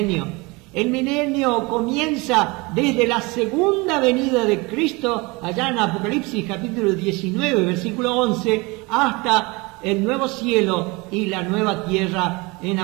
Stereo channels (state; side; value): quieter; left; 25.5 dB